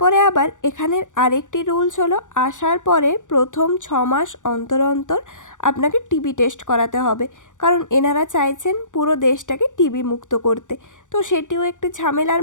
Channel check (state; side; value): late; right; 0.86 ms